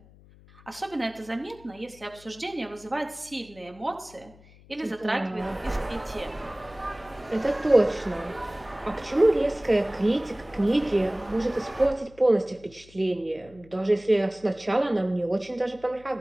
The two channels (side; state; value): left; noise; hum, 24 dB below the sound